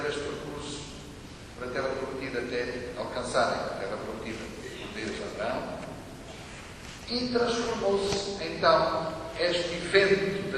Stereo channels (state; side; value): identical; both; correlation 1.00